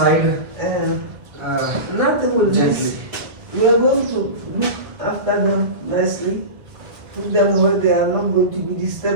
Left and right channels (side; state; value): left; late; 1.5 ms